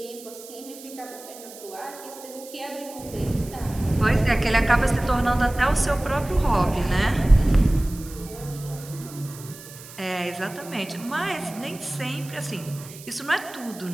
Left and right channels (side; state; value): right; noise; hiss, 17 dB below the sound